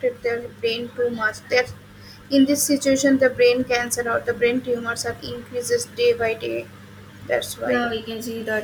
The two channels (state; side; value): identical; both; correlation 1.00